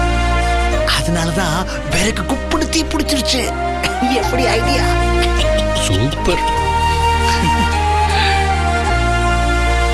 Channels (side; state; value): both; identical; correlation 1.00